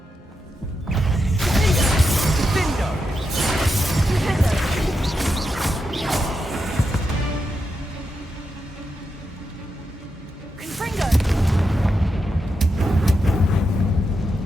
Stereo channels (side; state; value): both; normal; correlation 0.86